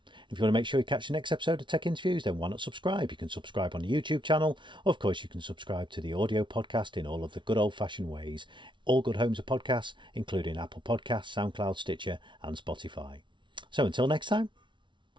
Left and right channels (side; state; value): left; late; 0.24 ms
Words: If you want to make sure you catch the next episode of Tech Interviews, then why not subscribe? You can subscribe on the YouTube channel. Of course, you can subscribe to the audio podcast in all of the good old-fashioned ways. All good homes of podcasts, including Apple Podcasts, SoundCloud, Stitcher, and Spotify. So until next time,